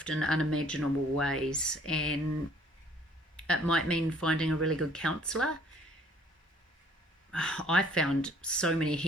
in unimaginable ways. And it might mean finding a really good counsellor. I found so many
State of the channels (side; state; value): both; normal; correlation 0.58